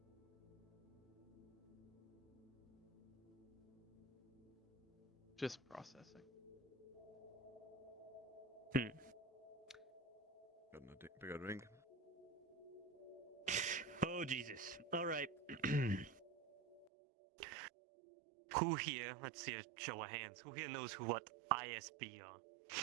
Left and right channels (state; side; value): drops out; left; at 16.9 s